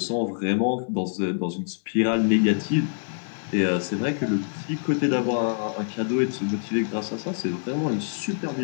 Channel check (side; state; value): right; silent; 58 dB below the other